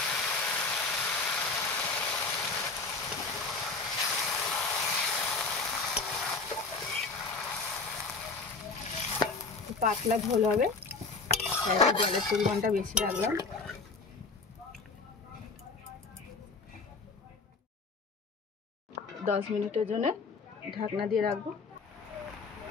পাতলা ঝোল হবে, তাই জলের পরিমাণটা বেশি রাখলাম। 10 মিনিটের জন্য ঢাকনা দিয়ে রাখবো।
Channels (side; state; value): right; quieter; 4.2 dB